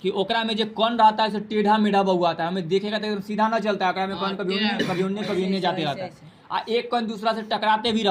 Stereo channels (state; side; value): identical; both; correlation 1.00